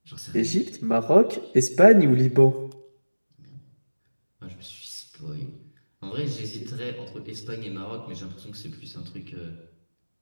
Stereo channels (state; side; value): inverted; both; correlation -1.00